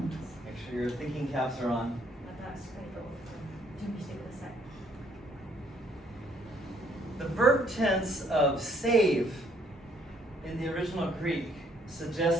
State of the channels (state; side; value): normal; both; correlation 0.65